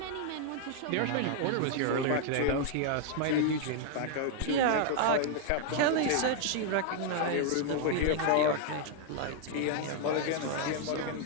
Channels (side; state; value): both; different; correlation 0.00